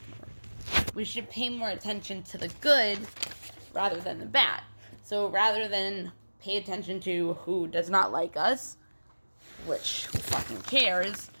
going to work. We should pay more attention to the good rather than the bad. So rather than pay attention to who does not like us, which who fucking cares,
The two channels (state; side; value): inverted; both; correlation -1.00